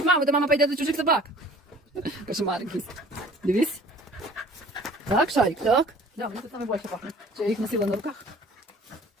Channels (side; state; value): both; normal; correlation 0.50